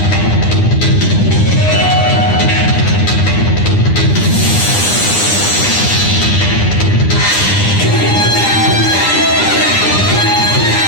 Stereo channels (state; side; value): late; right; 9.9 ms